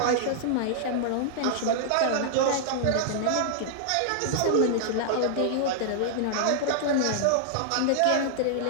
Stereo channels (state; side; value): different; both; correlation -0.01